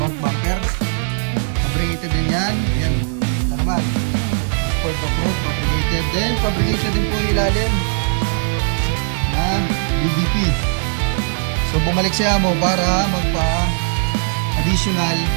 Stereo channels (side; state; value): left; silent; 56 dB below the other